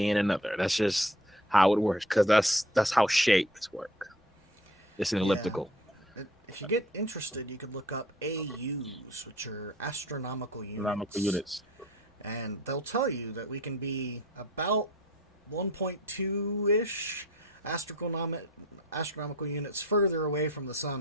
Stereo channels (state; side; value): normal; both; correlation 0.49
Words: in another. That's just how it works, because that's how shapes work. It's an elliptical. If you get interested, you could look up AUs, which are astronomical units. Astronomical units. And they'll tell you that we can be about 1.2-ish astronomical units further away from the